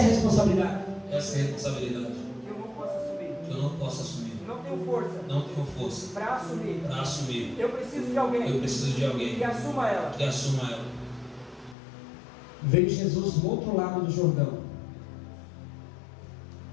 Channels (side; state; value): right; drops out; at 11.8 s